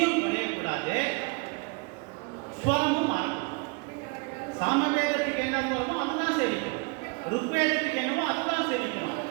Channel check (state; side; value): quieter; left; 30.4 dB